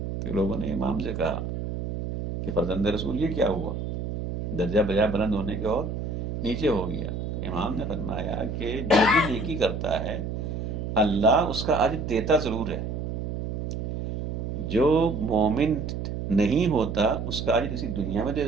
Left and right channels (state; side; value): noise; right; hum, 4 dB below the sound